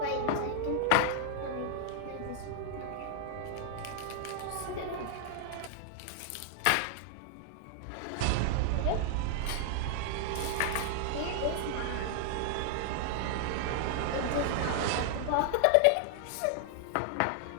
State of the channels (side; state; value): both; different; correlation -0.01